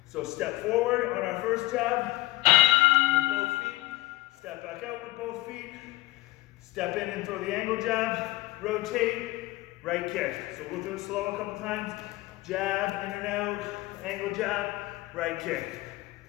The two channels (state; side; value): quieter; right; 19.0 dB